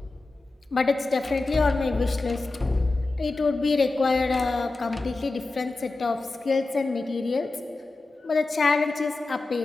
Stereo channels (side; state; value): right; quieter; 3.3 dB